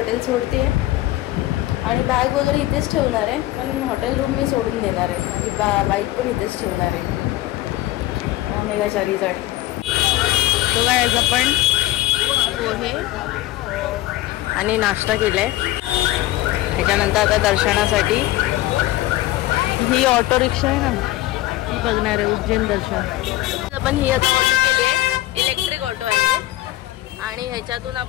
सोडते आणि बॅग वगैरे इथेच ठेवणार आहे. पण हॉटेल रूम मी सोडून देणार आहे. माझी बाईक पण इथेच ठेवणार आहे मेघाचारीजवळ. तो काय आपण पोहे आणि नाश्ता केलाय. त्याच्यानंतर आता दर्शनासाठी ही ऑटो रिक्षा आहे ना ही बघणार आहे उज्जैन दर्शन. आपण ही आता ऑटो केली आहे इलेक्ट्रिक ऑटो आहे आणि ह्याच्यातून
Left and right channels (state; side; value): quieter; right; 16.3 dB